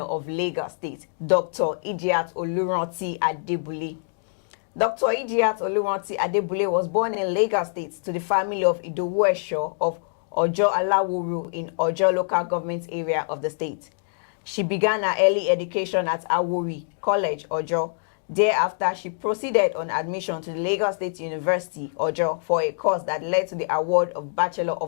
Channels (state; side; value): silent; right; digital silence